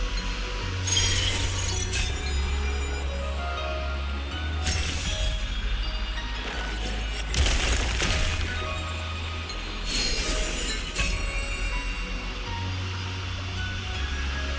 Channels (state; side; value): identical; both; correlation 1.00